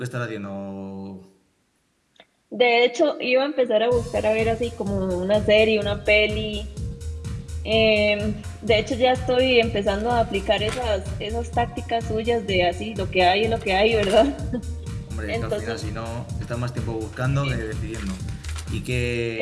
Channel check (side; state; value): both; identical; correlation 1.00